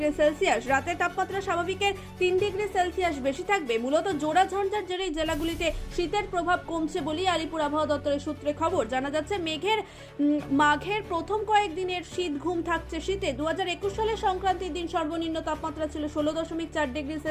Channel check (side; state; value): both; identical; correlation 1.00